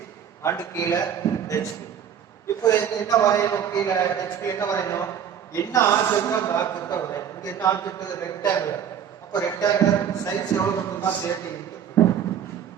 அண்ட் கீழ hp. இப்போ என்ன வரையணும்? கீழ hp என்ன வரையணும்? என்ன ஆப்ஜெக்ட் அந்த ஆப்ஜெக்ட்டை வரையணும். இங்க என்ன ஆப்ஜெக்ட்? ரெக்டாங்குலர். அப்ப ரெக்டாங்குலர் சைஸ் எவ்வளவு வந்துன்னா 30 into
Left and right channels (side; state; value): left; quieter; 8.6 dB